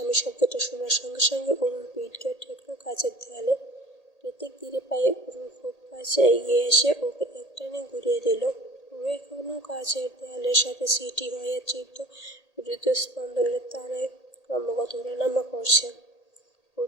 শব্দটা শোনার সঙ্গে সঙ্গে অরুণ পিঠ গিয়ে ঠেকল কাচের দেয়ালে। কৃতিক ধীরে পায়ে অরুর খুব কাছে এগিয়ে এসে ওকে একটানে ঘুরিয়ে দিল। পুরো এখনো কাচের দেয়ালের সাথে সিটি হয়ে তীব্র হৃদস্পন্দনের তারায় ক্রমাগত ওঠানামা করছে ওর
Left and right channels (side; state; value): right; late; 1.8 ms